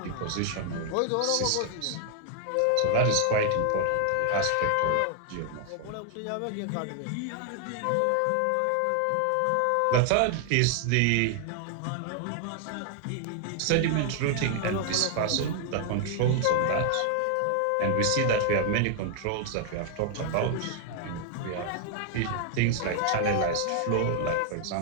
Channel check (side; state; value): both; different; correlation 0.00